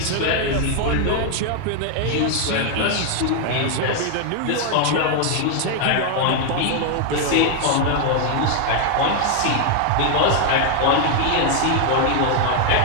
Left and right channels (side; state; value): both; different; correlation 0.00